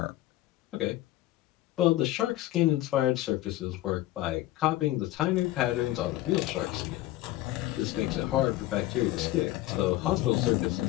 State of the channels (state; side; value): quieter; right; 16.1 dB